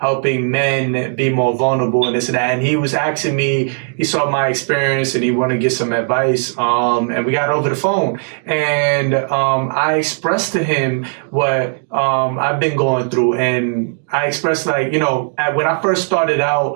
men be more vulnerable and this and that. And he was asking me, he saw my experience and he wanted to get some advice. And we got over the phone, and I expressed to him what I've been going through. And I expressed like, when I first started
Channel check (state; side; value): silent; left; 62 dB below the other